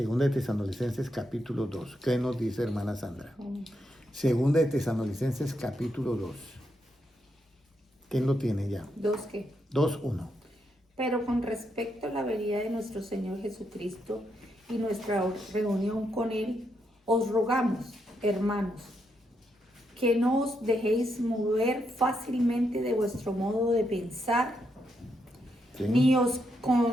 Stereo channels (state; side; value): normal; both; correlation 0.80